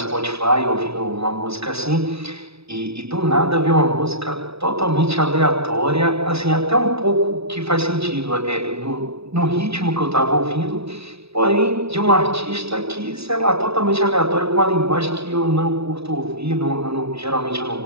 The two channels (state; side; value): late; left; 0.78 ms